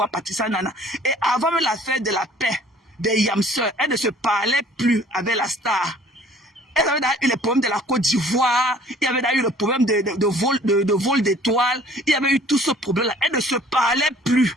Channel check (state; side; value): normal; both; correlation 0.53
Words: Patissa Nana. Et avant même l'affaire de la paix, des Yamseurs, elle ne se parlait plus avec la star. Elle avait eu le problème de la Côte d'Ivoire, il y avait eu le problème de vol d'étoiles, il y avait eu tout ce problème-là. Elle ne se parlait plus.